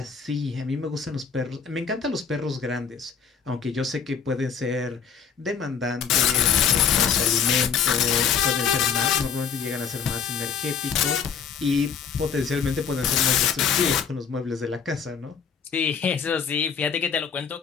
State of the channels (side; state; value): right; quieter; 6.8 dB